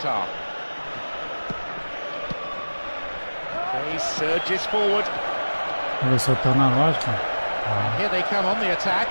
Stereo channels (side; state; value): both; inverted; correlation -1.00